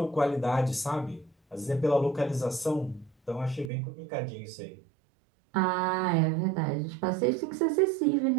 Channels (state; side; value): drops out; left; at 3.7 s